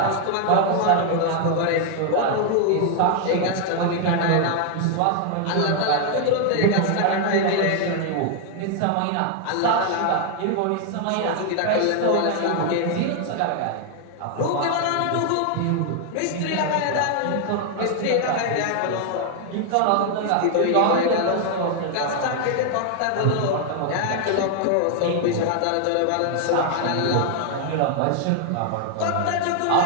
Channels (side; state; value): both; different; correlation 0.00